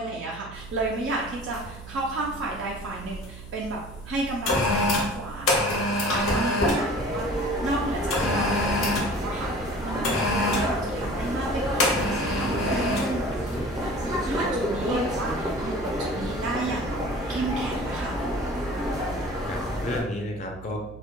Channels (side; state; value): right; noise; hum, 15 dB below the sound